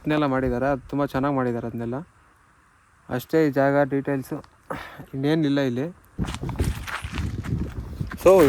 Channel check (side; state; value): both; identical; correlation 1.00